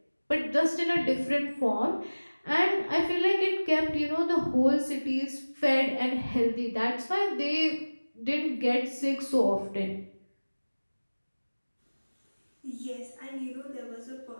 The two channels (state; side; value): inverted; both; correlation -1.00